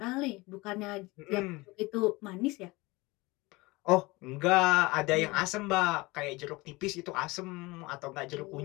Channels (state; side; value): quieter; right; 22.6 dB